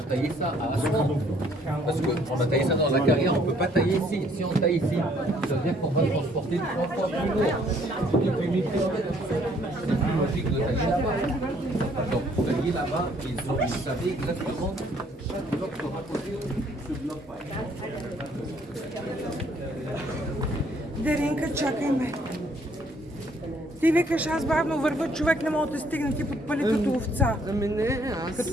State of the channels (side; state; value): both; normal; correlation 0.64